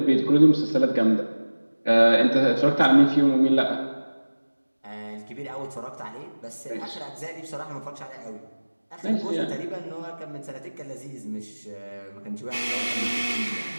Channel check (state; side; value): inverted; both; correlation -1.00